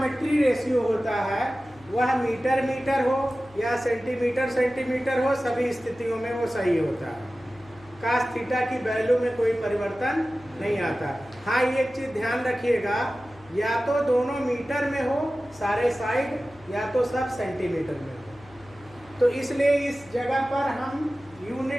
रेशियो होता है वह मीटर मीटर हो या सेंटीमीटर सेंटीमीटर हो, सभी स्थितियों में वो सही होता है। cos थीटा की वैल्यू में कोई परिवर्तन नहीं आता। हाँ, ये एक चीज ध्यान रखिएगा, या तो दोनों मीटर में हो सारे साइड, या तो सब सेंटीमीटर में हो। तो इसलिए इस जगह पर हम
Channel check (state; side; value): noise; left; hum, 24 dB below the sound